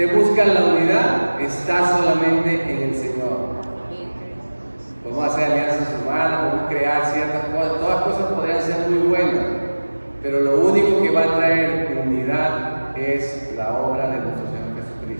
busca la unidad, está solamente en el Señor. Podemos hacer alianzas humanas, podemos crear ciertas cosas, todas cosas podrían ser muy buenas, pero lo único que va a traer unidad es la obra de nuestro Señor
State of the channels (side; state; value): both; inverted; correlation -1.00